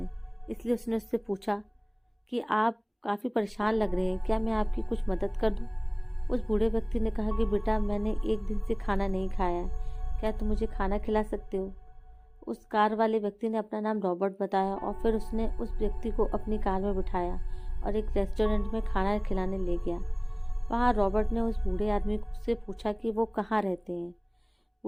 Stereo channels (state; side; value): identical; both; correlation 1.00